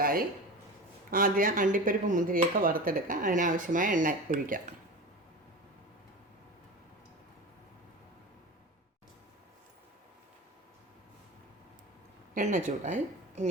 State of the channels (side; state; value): both; normal; correlation 0.30